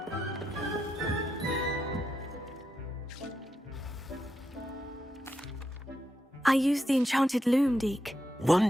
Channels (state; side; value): normal; both; correlation 0.84